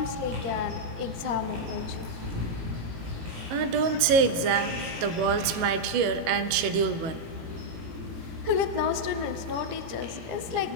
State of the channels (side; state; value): left; late; 18 ms